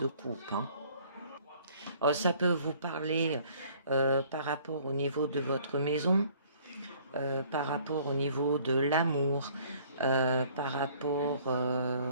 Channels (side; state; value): both; inverted; correlation -0.57